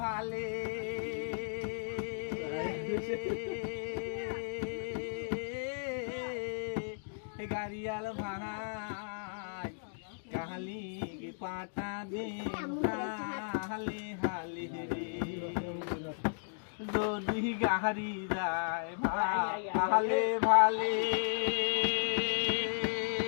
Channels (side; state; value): right; silent; digital silence